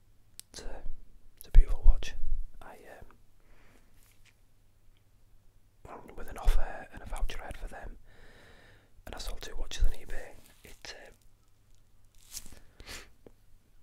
It's a beautiful watch. With an offer and a voucher I had for them, and I sold 2 watches on eBay.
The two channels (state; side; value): identical; both; correlation 1.00